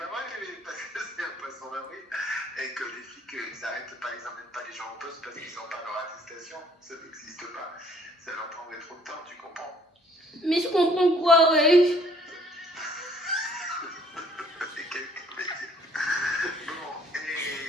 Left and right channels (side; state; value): both; normal; correlation 0.61